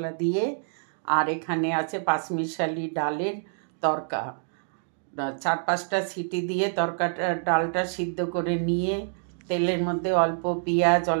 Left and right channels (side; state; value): left; silent; digital silence